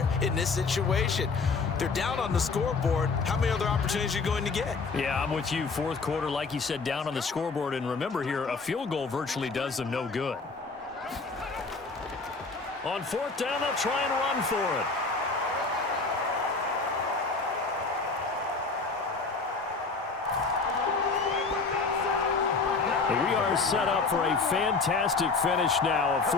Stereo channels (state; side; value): quieter; right; 4.3 dB